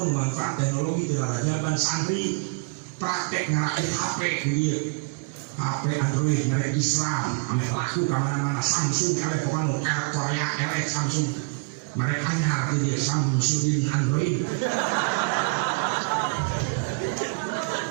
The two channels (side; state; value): left; quieter; 32.9 dB